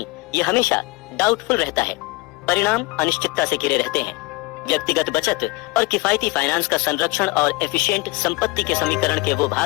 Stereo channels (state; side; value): quieter; right; 22.7 dB